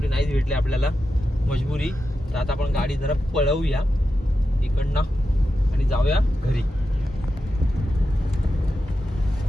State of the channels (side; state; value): both; normal; correlation 0.90